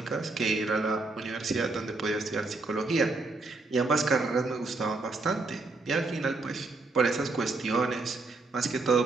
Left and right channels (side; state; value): left; quieter; 3.4 dB